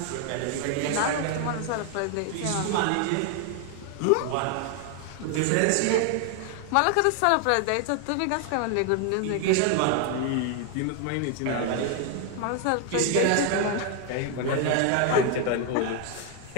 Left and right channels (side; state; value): both; different; correlation 0.00